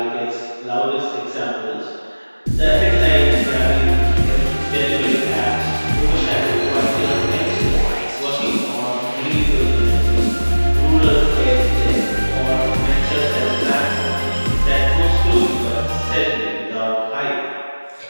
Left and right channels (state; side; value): inverted; both; correlation -1.00